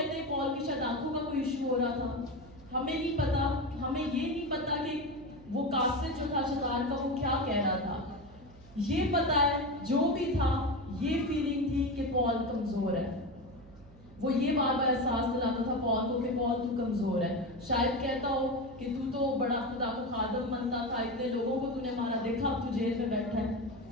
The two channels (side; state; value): right; noise; hum, 22 dB below the sound